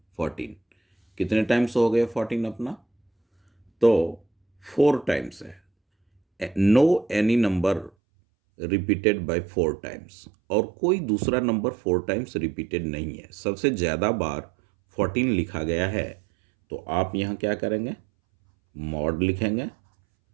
14। कितने टाइम्स हो गए 14 अपना, तो 4 टाइम्स है। No any number repeated by 4 times, और कोई दूसरा नंबर 4 टाइम्स रिपीटेड नहीं है। सबसे ज़्यादा बार 14 लिखा गया है, तो आप यहाँ क्या करेंगे, मॉड लिखेंगे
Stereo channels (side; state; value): left; drops out; at 7.9 s